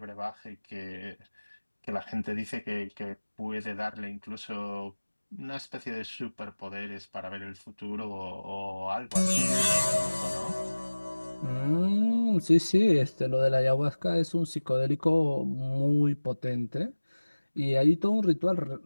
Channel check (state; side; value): inverted; both; correlation -1.00